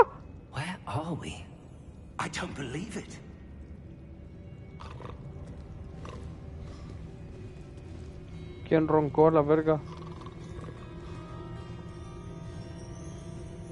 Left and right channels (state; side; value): identical; both; correlation 1.00